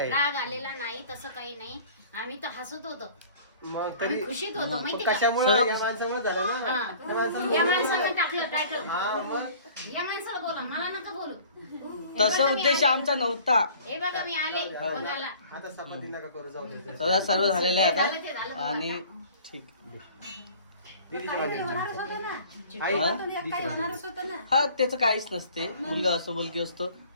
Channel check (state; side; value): inverted; both; correlation -0.48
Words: राग आलेला नाही, तसं काही नाही. आम्ही तर हसत होतो, मग तरी खुशीत होतो. माहिती का? कशामुळे या माणसामुळे झालं ना. या माणसानं टाकलं टायटल. हा मग या माणसाला बोला, मला नका बोलू. तसा उद्देश आमचा नव्हता. हे बघा मी आले बघायला. आता सपाती नका करू, जाऊ दे. सर्व झालेलं आहे झालं ते आता. झालं. आणि ठीक हा त्याचं काहीच नसते. मुलगा असतो मुलगी असतो.